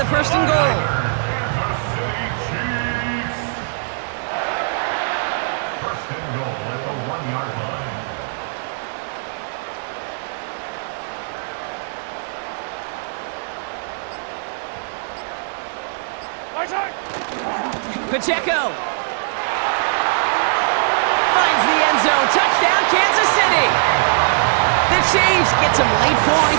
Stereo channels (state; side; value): silent; left; 65 dB below the other